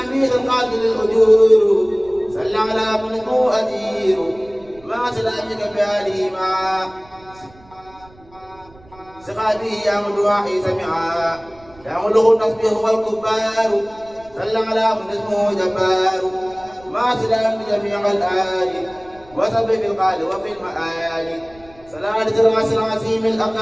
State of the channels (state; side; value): noise; right; rumble, 26 dB below the sound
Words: من القاتل الأجور صلى على من هو أدير ما سلامك بآله ما سقاتي يا مدواحي سمعا يا ملغ التصبيح والكبار صلى على من اسمه جبار ما سلام بجميع الآل وسب في القال وفي المآل صلاة الراس العظيم